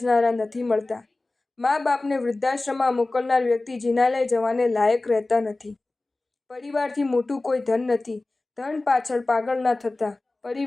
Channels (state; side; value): quieter; right; 3.1 dB